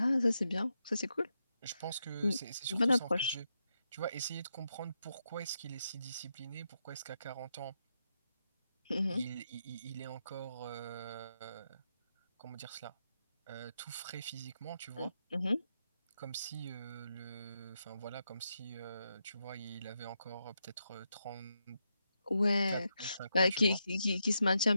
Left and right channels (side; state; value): both; inverted; correlation -0.84